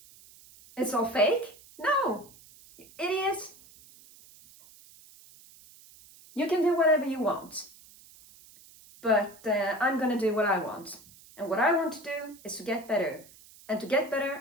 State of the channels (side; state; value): right; noise; hiss, 23 dB below the sound